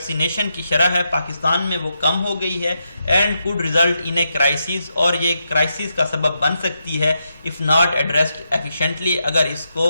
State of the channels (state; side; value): inverted; both; correlation -0.84